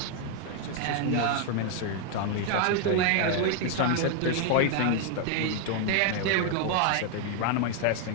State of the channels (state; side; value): different; both; correlation 0.00